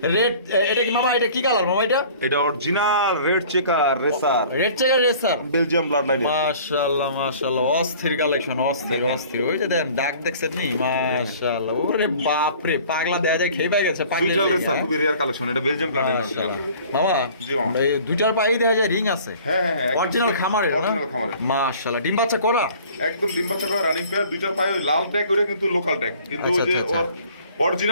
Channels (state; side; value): inverted; both; correlation -0.49